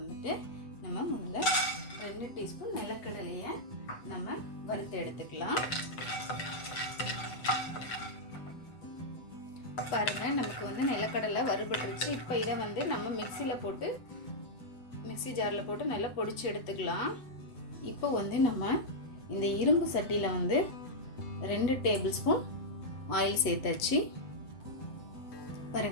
நம்ம முதல்ல 2 டீஸ்பூன் நிலக்கடலையை நம்ம வறுத்து எடுத்துக்கலாம். பாருங்கள், நமக்கு வந்து நிலக்கடலை வறுபட்டுருச்சு. இப்போ இதை வந்து நம்ம மிக்ஸி ஜாரில் போட்டு நல்லா பொடிச்சு எடுத்துக்கலாம். இப்போ வந்து நம்ம இந்த இரும்பு சட்டியில் வந்து 2 டேபிள் ஸ்பூன் ஆயில் சேர்த்தாச்சு.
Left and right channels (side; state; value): right; late; 7.9 ms